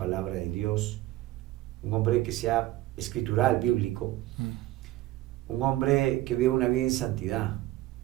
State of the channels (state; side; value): quieter; left; 16.4 dB